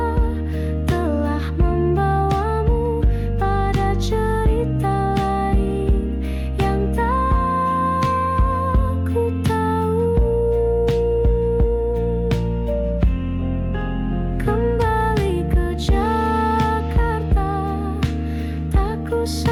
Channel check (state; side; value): identical; both; correlation 1.00